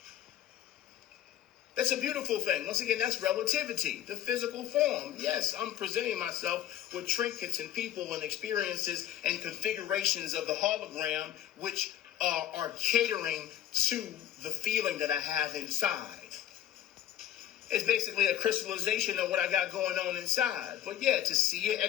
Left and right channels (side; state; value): right; quieter; 11.7 dB